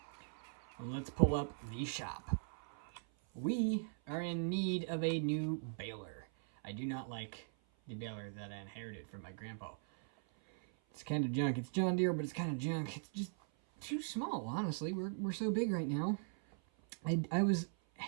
let's pull up the shop. We are in need of a new baler. I do not like the baler that I inherited from my grandpa. It's kind of junk. It's John Deere, but it's kind of junk. It's just too small, honestly. We're so big right now. I was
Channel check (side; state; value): left; silent; 51 dB below the other